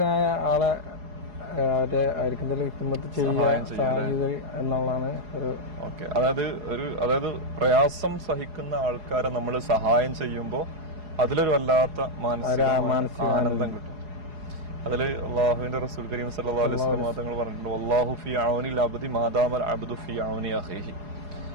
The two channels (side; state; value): left; late; 4.8 ms